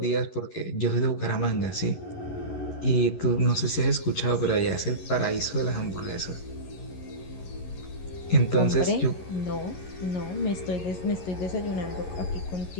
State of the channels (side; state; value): right; late; 11 ms